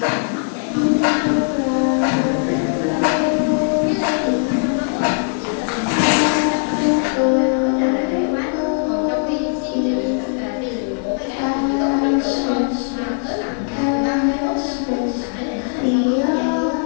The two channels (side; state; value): right; silent; 59 dB below the other